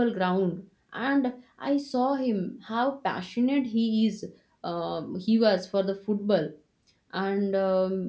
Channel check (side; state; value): both; identical; correlation 1.00